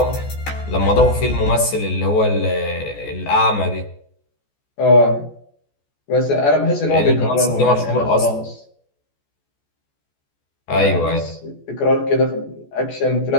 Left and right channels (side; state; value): right; late; 14 ms